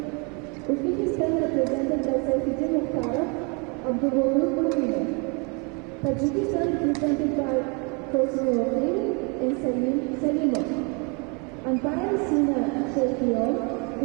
Uzbekistan represented by Saifuddin Mukhtarov, Abdulvodud Mominov. Tajikistan represented by Qasim Oqil and Salim Salimov. Umpire Sina Sheikhion,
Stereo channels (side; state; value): left; quieter; 31.7 dB